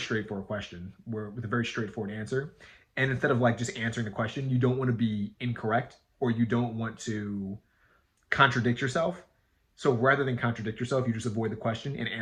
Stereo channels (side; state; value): both; identical; correlation 1.00